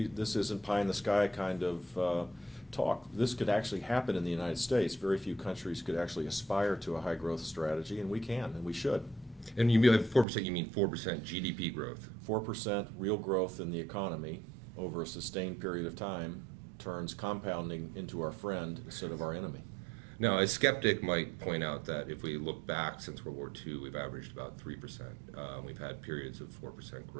isn't pie in the sky kind of talk. This could actually happen in the United States. Very few countries could actually aspire to a high growth strategy, and we can, and we should. And you mean 4%, you mean 4% GDP growth? 4% real growth in the economy over a sustained period of time turns compounding into our friend instead of our enemy. Now, a skeptic might point out that if we look back since World War II, we've averaged about 3%. We've had periods of 4%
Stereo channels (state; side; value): drops out; left; at 10.2 s